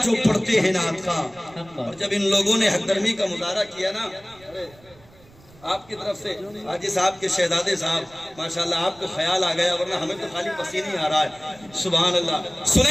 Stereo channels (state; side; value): noise; right; rumble, 26 dB below the sound